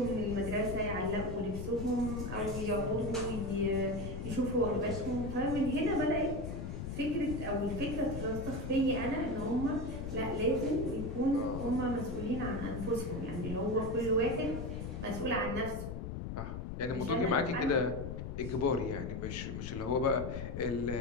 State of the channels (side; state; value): left; noise; rumble, 5 dB below the sound